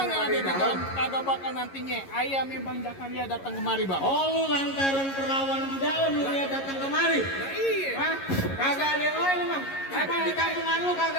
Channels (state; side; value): late; right; 11 ms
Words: yang yang ada di di dalam. dalam kagak bakal nantinya ayam yang Bang Jakaria datang kemari bang. Oh lu lantaran perawan di dalam lu dia datang kemari. Nah, iya. Hah? Kagak ada yang lain emang. Emang di kampungan lu